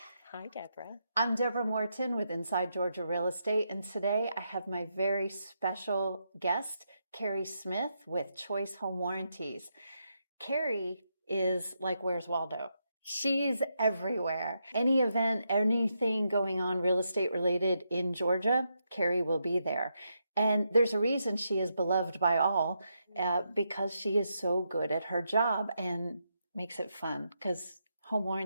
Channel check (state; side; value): inverted; both; correlation -0.82